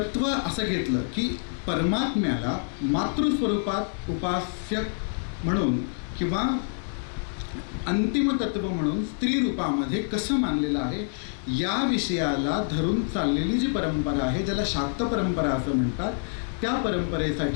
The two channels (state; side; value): silent; right; digital silence